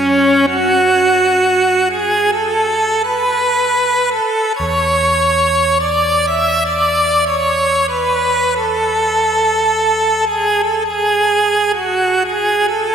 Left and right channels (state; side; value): normal; both; correlation 0.70